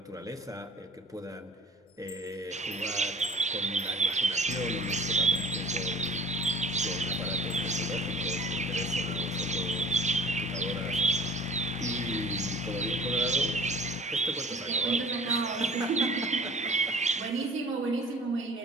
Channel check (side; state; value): both; normal; correlation 0.46